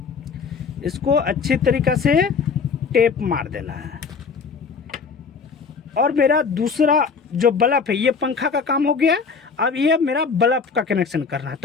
इसको अच्छी तरीक़ा से टेप मार देना है। और मेरा दूसरा जो बल्ब है, ये पंखा का काम हो गया। अब ये मेरा बल्ब का कनेक्शन करना है,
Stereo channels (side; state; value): right; quieter; 5.4 dB